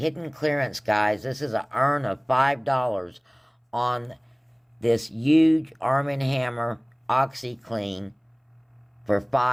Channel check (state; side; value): identical; both; correlation 1.00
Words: clearance, guys. This is an earn of $5 on this huge Arm & Hammer OxyClean for